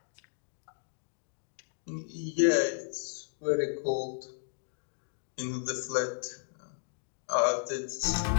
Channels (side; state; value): right; silent; 55 dB below the other